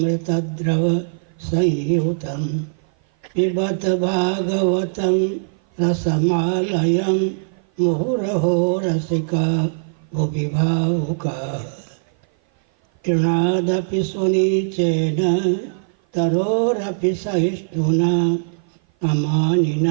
संयुतं पिबत भागवतं रसमालयं मुहुरहो रसिका भुवि भावुकाः। तृणादपि सुनीचेन तरोरपि सहिष्णुना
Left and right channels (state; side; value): silent; left; 55 dB below the other